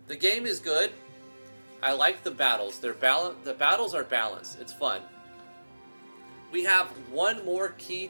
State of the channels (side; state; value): both; inverted; correlation -1.00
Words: game is good. I like the battles. The battles are balanced. It's fun. We have one more key